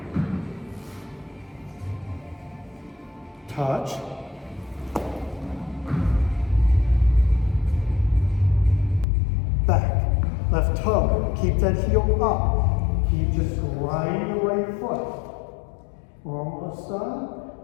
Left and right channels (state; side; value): drops out; right; at 9.1 s